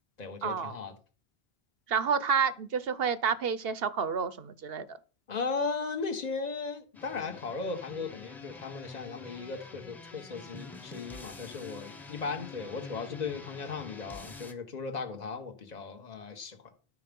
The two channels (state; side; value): normal; both; correlation -0.01